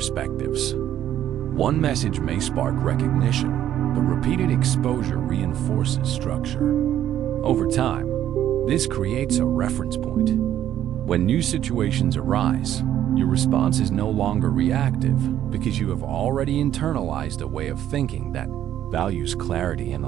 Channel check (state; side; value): quieter; left; 11.4 dB